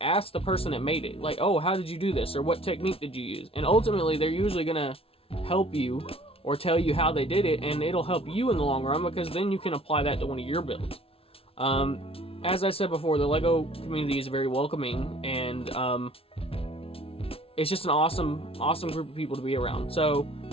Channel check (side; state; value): right; late; 0.27 ms